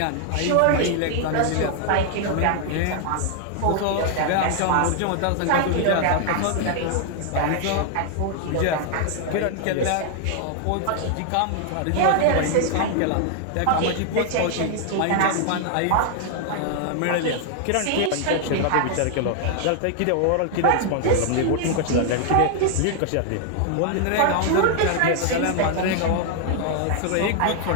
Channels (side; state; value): both; different; correlation 0.00